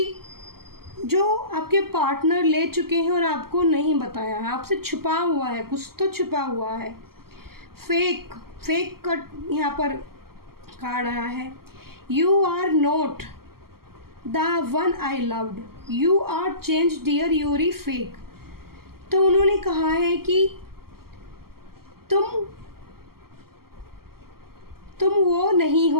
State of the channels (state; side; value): late; left; 0.93 ms